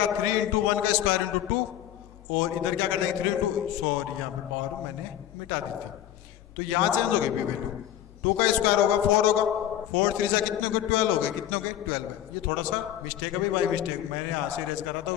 3 × 1 का स्क्वायर × 2, और इधर क्या करना है 3 × सॉरी यहाँ पे पावर मैंने मिटा दी थी, तो यहाँ चेंज हो गई भी वैल्यू। 2 का स्क्वायर होगा 4 होगा, 4 3 से कितने हो गए 12 हो गए, कितने हो गए 12 है। ये थोड़ा सा मिस्टेक है भाई, बाई मिस्टेक, मैंने यहाँ से रेज करा था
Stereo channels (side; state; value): right; quieter; 11.6 dB